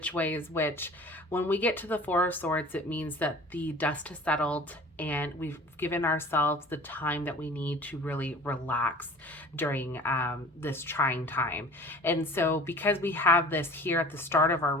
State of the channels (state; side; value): normal; both; correlation 0.44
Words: way is which. When we get to the Four of Swords, it means that the dust has settled and we've given ourselves the time that we need to really relax during this trying time. And so because we have this here at the start of our